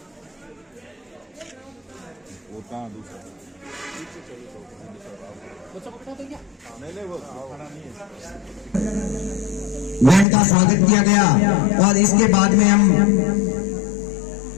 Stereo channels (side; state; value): right; drops out; at 10.2 s